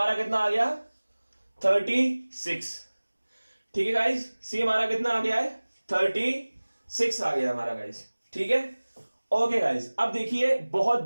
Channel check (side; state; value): both; inverted; correlation -1.00